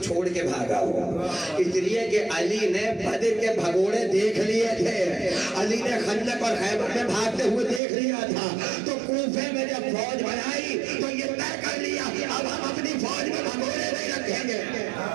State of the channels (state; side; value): drops out; left; at 7.8 s